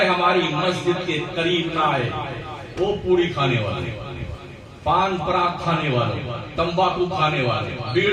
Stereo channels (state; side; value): identical; both; correlation 1.00